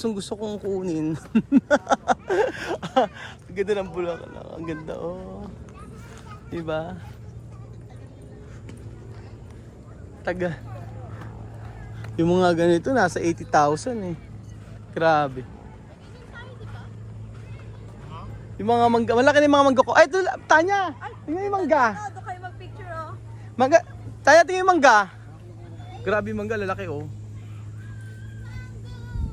kong kunin. Ang ganda ng Bulacan. Ang ganda, oh. Diba? Taga. Yung mga ganito, nasa 80,000 eh. Grabe. Yung mga mangga, malaki na yung mga mangga ko. Ay, ito, Tanya! Tingnan yung mangga. Doon kayo mag-picture oh. Mangga, Tanya, tingnan yung mangga. Grabe yung mangga, lalaki oh.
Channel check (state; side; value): identical; both; correlation 1.00